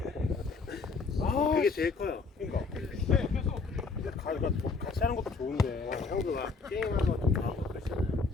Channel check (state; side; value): quieter; right; 4.4 dB